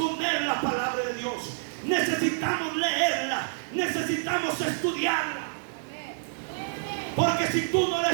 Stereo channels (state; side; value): silent; left; digital silence